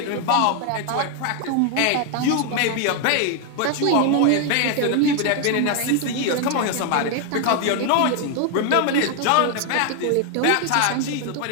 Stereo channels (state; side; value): different; both; correlation 0.00